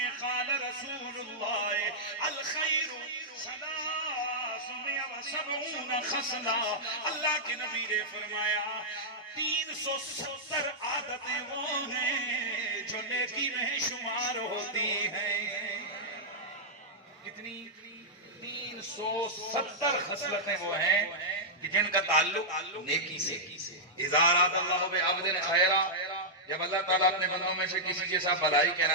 قال رسول اللہ الخیر 300 70 خصلہ، اللہ کے نبی نے فرمایا 370 عادتیں وہ ہیں جو نیکی میں شمار ہوتی ہیں. کتنی؟ 370 خصلتیں وہ ہیں کہ جن کا تعلق نیکی سے. اذا اراد اللہ بعبد خیرا، جب اللہ تعالیٰ اپنے بندوں میں سے کسی کے ساتھ بھلائی کا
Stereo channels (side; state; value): both; normal; correlation -0.08